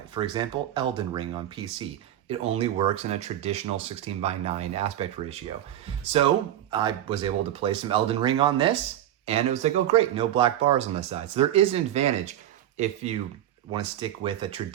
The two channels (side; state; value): left; quieter; 11.9 dB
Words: For example, Elden Ring on PC. It only works in a traditional 16:9 aspect ratio. So I was able to play some Elden Ring on this, and it was like, oh great, no black bars on the side. So there is an advantage if you want to stick with a